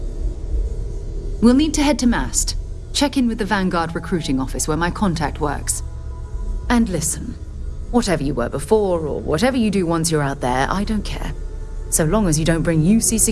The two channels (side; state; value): both; identical; correlation 1.00